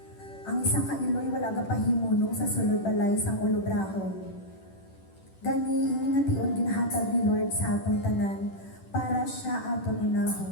Ang isang kailoy wala ga pahimunong sa sulod balay sang ulobrahon. Gani ini nga tion ginahatag ni Lord sa atong tanan para siya aton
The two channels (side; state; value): right; late; 10 ms